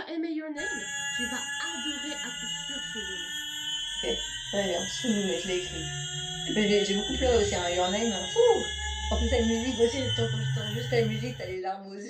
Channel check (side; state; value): both; identical; correlation 1.00